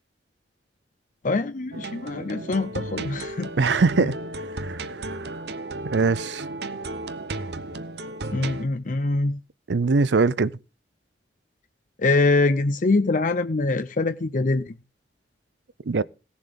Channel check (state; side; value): normal; both; correlation 0.44